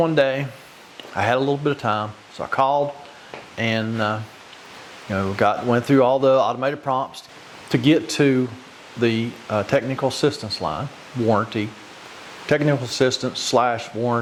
day. I had a little bit of time, so I called and went through all the automated prompts to get to the technical assistance line, technical assistance /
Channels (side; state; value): both; identical; correlation 1.00